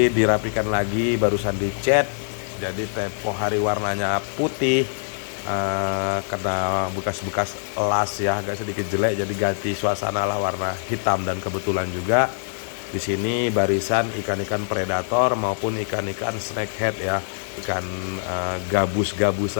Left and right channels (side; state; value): right; silent; 58 dB below the other